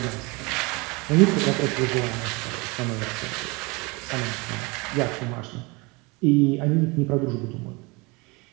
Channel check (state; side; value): quieter; left; 26.6 dB